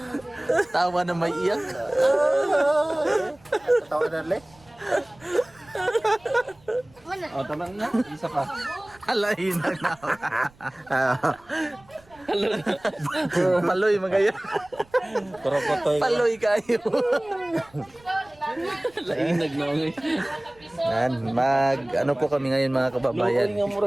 Tawa na may iyak. Tawa na ulit. O, tama na. Isa pa. Alayin na na. Paloy magaya. Korokotoy. Paloy kayo. Lainag na nga. Yan, ano po kami ngayon mga kababayan. Luoy nga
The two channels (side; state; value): right; noise; rumble, 28 dB below the sound